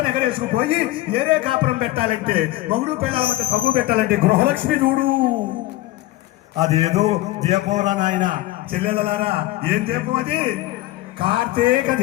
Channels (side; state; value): right; quieter; 16.9 dB